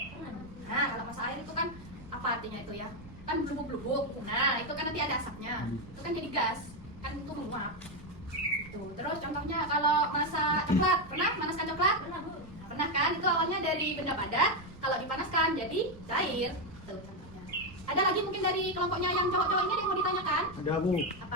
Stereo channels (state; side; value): noise; right; rumble, 18 dB below the sound